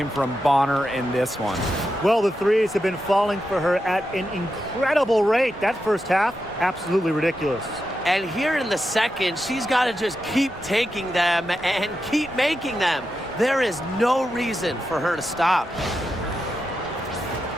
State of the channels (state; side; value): normal; both; correlation 0.88